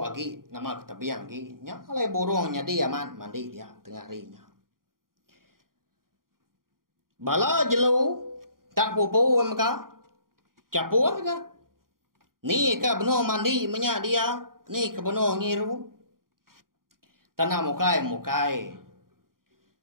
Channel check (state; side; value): late; left; 0.91 ms